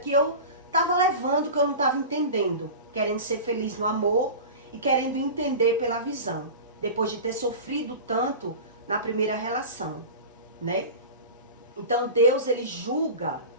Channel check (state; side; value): inverted; both; correlation -0.32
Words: eu estava levando, que eu não estava entendendo. Querendo ser feliz no amor e querendo entender pela visão. Depois de ter sofrido tanto na primeira relação, né? Então Deus, ele julga